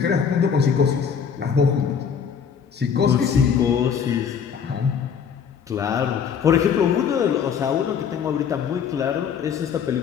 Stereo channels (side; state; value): right; quieter; 7.1 dB